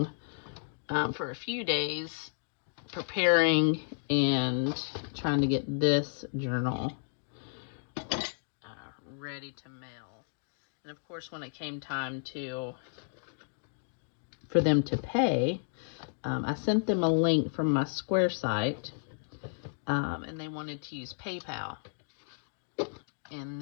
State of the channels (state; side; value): silent; right; digital silence